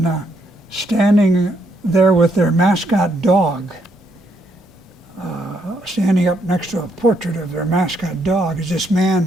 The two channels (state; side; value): normal; both; correlation 0.74